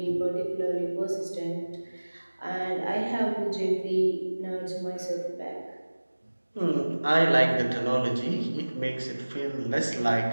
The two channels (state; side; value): inverted; both; correlation -1.00